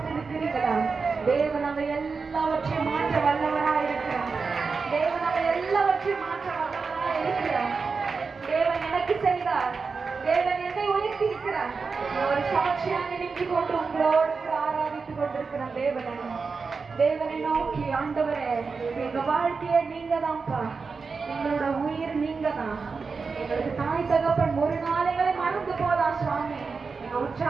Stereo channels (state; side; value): quieter; left; 4.8 dB